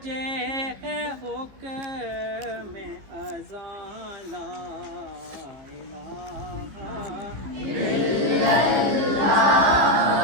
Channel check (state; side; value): late; left; 15 ms